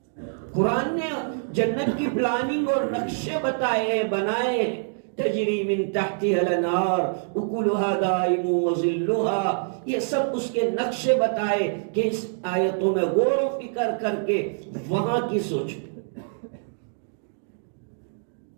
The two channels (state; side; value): silent; left; digital silence